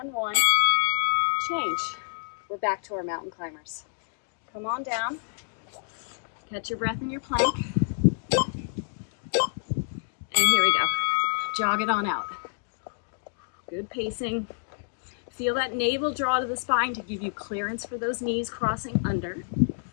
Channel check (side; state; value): right; silent; digital silence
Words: and 1. Change. We're back to our mountain climbers. Come on down. Catch your breath in your plank. And here we go. Jog it on out. Good pacing. Feel that navel draw to the spine to give you clearance for those knees crossing under.